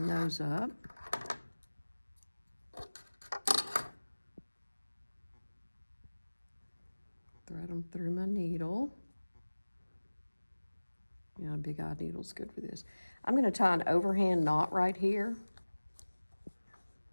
those up. thread them through my needle. You know, a big eye needle's good for this. I'm going to tie an overhand knot right here.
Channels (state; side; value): inverted; both; correlation -1.00